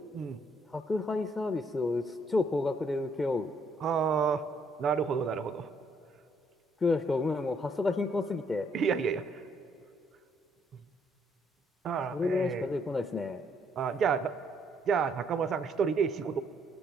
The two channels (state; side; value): normal; both; correlation 0.69